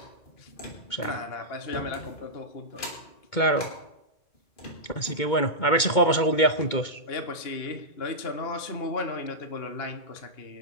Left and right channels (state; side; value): late; right; 2.2 ms